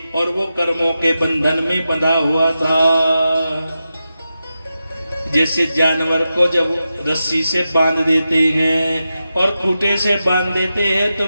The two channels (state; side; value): inverted; both; correlation -0.90